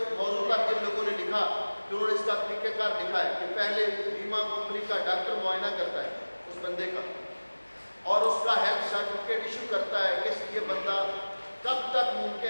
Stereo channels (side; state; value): both; inverted; correlation -1.00